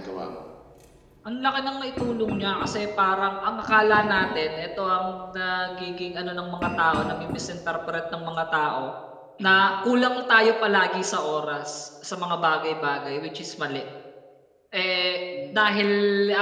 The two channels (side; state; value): both; identical; correlation 1.00